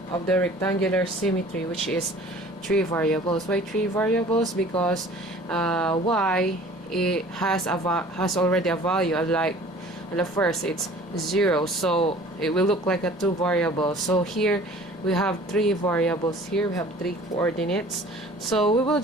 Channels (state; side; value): noise; right; rumble, 30 dB below the sound